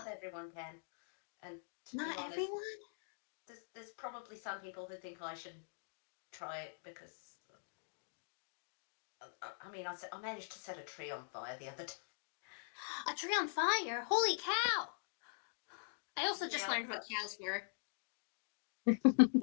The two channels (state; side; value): silent; right; digital silence